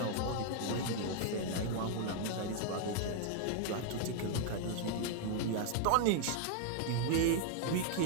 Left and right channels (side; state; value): both; different; correlation 0.00